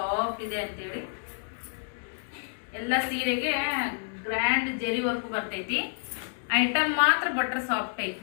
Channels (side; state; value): right; silent; digital silence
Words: ಇದೆ ಅಂತೇಳಿ. ಎಲ್ಲ ಸೀರೆಗೆ ಗ್ರ್ಯಾಂಡ್ ಜೆರಿ ವರ್ಕ್ ಬರ್ತೈತಿ. ಐಟಮ್ ಮಾತ್ರ ಬಟ್ರ್ ಸಾಫ್ಟ್ ಐತಿ